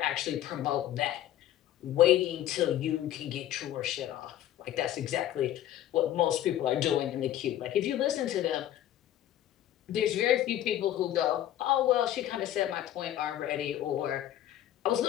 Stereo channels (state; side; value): quieter; right; 12.4 dB